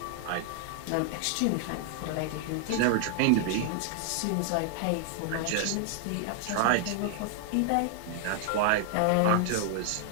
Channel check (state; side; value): different; both; correlation 0.00